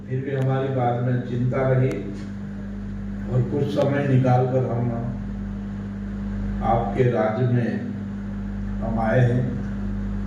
फिर भी हमारी बाद में चिंता रही और कुछ समय निकाल कर हम आपके राज्य में हम आए हैं।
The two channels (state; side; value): identical; both; correlation 1.00